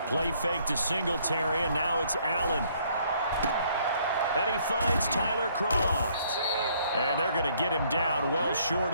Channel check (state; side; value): inverted; both; correlation -0.65